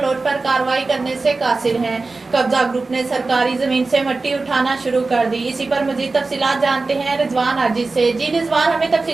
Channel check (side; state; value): left; quieter; 3.7 dB